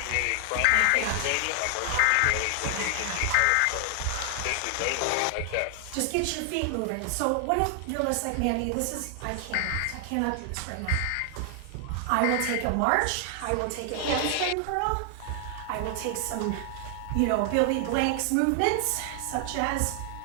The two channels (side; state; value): both; different; correlation 0.00